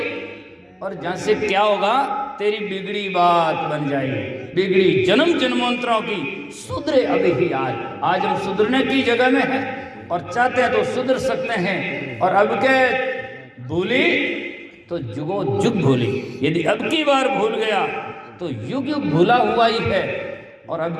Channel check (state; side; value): identical; both; correlation 1.00